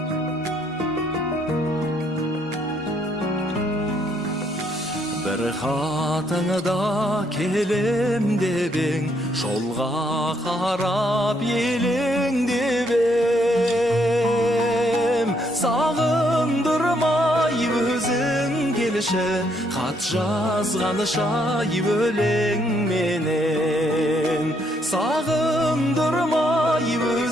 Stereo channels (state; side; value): normal; both; correlation 0.72